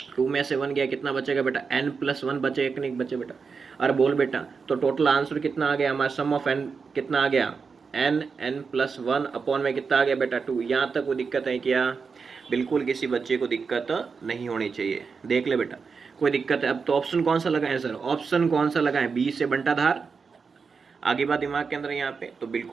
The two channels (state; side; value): quieter; left; 5.3 dB